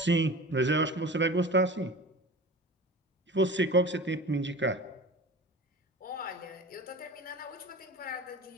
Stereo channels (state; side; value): normal; both; correlation 0.36